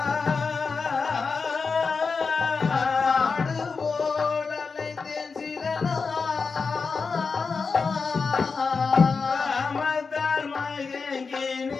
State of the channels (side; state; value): right; quieter; 4.8 dB